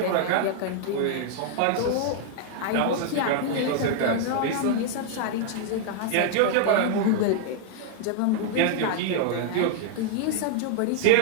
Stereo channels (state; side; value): different; both; correlation 0.00